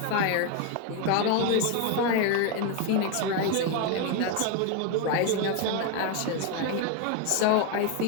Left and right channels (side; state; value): both; different; correlation 0.02